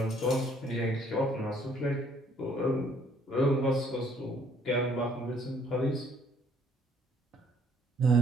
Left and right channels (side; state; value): both; normal; correlation 0.62